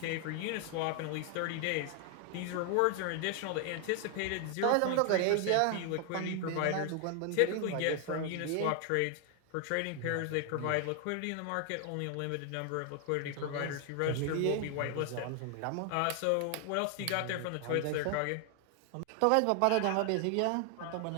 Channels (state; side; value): different; both; correlation 0.00